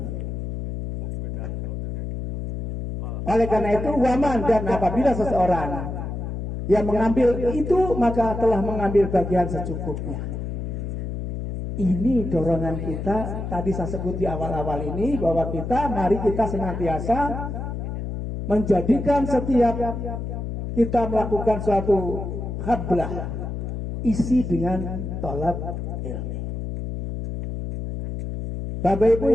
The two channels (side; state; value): left; noise; hum, 5 dB below the sound